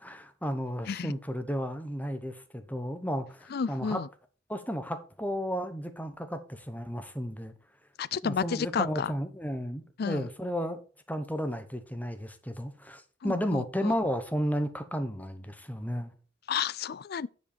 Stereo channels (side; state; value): both; normal; correlation 0.67